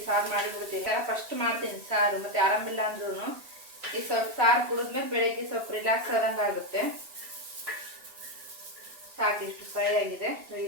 ಸಾರು ಮಾಡಿಬಿಡ್ತೀನಿ. ಫಸ್ಟ್ ಮಾಡ್ತೀನಿ ಸಾರು, ಮತ್ತು ಆರಾಮಿಲ್ಲ ಅಂದ್ರೂ ಈ ಸ್ವಲ್ಪ ಸಾರು ಕುಡಿದ್ಮೇಲೆ ಬೆಳಗ್ಗೆ ಸ್ವಲ್ಪ ರಿಲ್ಯಾಕ್ಸ್ ಆದಂಗೆ ಆಗುತ್ತೆ. ಸಾಕು, ಇಷ್ಟು ಫ್ರೈ ಆಗಿದೆ.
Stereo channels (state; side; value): late; left; 2.9 ms